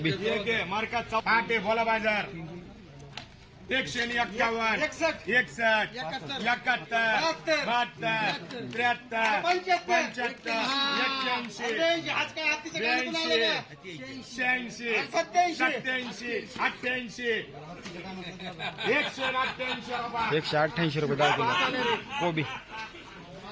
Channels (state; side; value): identical; both; correlation 1.00